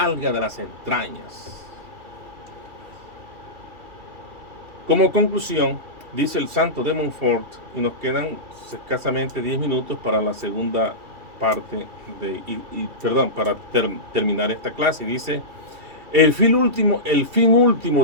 de las entrañas. Como conclusión, dice el santo de Montfort, y nos quedan escasamente 10 minutos para la segunda parte, para terminar esta clase. Dice, el fin último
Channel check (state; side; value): late; left; 2.8 ms